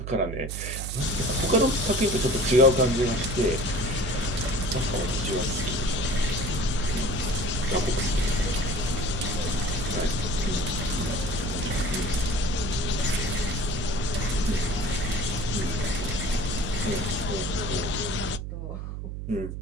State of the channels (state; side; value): noise; right; hum, 6 dB below the sound